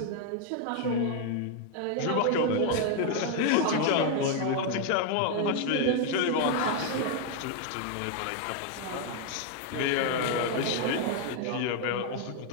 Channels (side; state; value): both; different; correlation 0.00